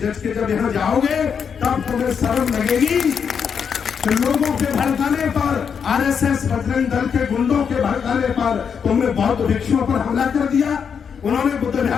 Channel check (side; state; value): right; quieter; 6.8 dB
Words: के जब यहाँ जाओगे तब तुम्हें शर्म लगेगी कि लोगों के भड़काने पर, RSS बजरंग दल के गुंडों के भड़काने पर तुमने बौद्ध भिक्षुओं पर हमला कर दिया, उन्होंने बुद्ध